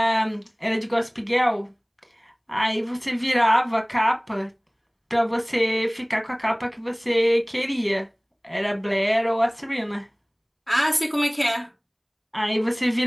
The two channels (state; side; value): identical; both; correlation 1.00